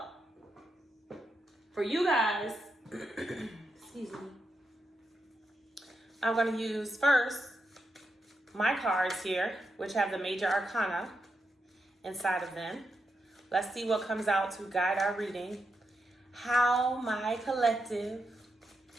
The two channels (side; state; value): both; normal; correlation 0.84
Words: for you guys, excuse me. I'm going to use first my cards here, which have the major arcana inside of them. Let's see what comes out to guide our reading. How my collective